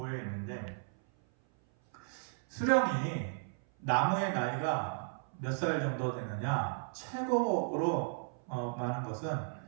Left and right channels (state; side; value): silent; left; 54 dB below the other